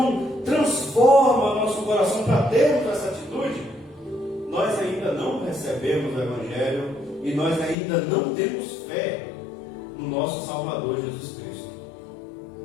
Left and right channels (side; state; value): right; drops out; at 7.8 s